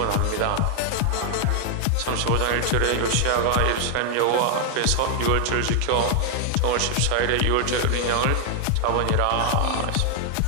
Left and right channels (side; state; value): both; different; correlation 0.00